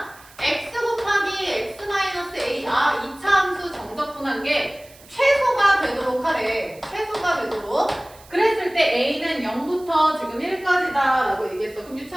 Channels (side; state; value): right; noise; hiss, 24 dB below the sound